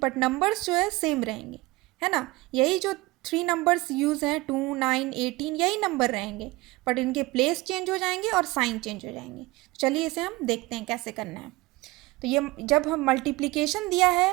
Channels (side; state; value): left; quieter; 21.7 dB